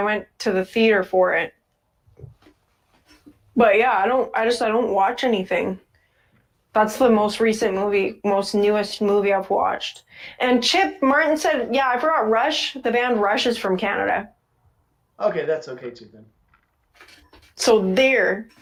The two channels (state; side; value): identical; both; correlation 1.00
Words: went to the theater for it. But yeah, I don't watch anything. That's the most recent movie, most newest movie I've watched. And Chip Martin said, yeah, I forgot Rush. The band Rush is from Canada. Okay, that's okay too then. So there,